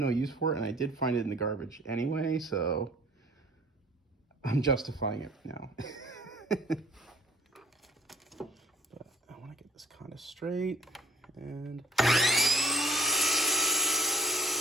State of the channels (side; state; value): both; normal; correlation 0.56